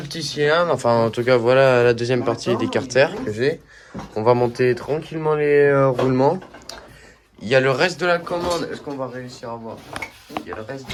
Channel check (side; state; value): both; identical; correlation 1.00